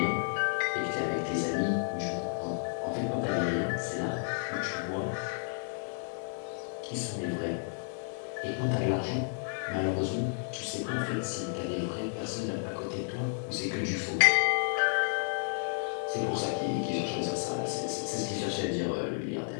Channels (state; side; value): silent; right; 57 dB below the other